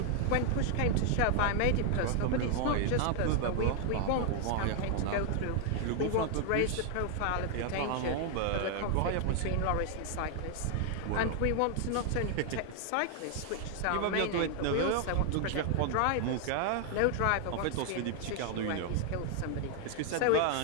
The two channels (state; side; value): different; both; correlation 0.00